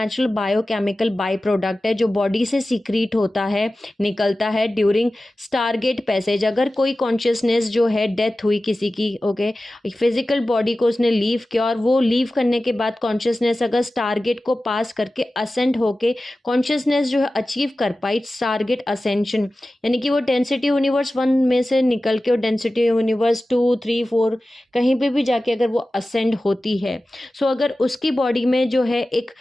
बायोकेमिकल बाई प्रोडक्ट है जो बॉडी से सिक्रीट होता है, निकलता है ड्यूरिंग स्टारगेट पैसेज। अगर कोई कॉन्शियसनेस जो है डेथ हुई किसी की, ओके, फिजिकल बॉडी को उसने लीव किया और वो लीव करने के बाद कॉन्शियसनेस अगर स्टारगेट को पास करके असेंड होके कॉन्शियसनेस जो है अचीव कर पाई, स्टारगेट असेंशन, यानी कि वो डेंसिटी यूनिवर्स 1 में से निकल के और डेंसिटी यूनिवर्स 2, 3, 4 कहीं पे भी जाके अगर वो असेंड होती है, सो अगर उसकी बॉडी में जो है एक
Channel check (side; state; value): both; normal; correlation 0.95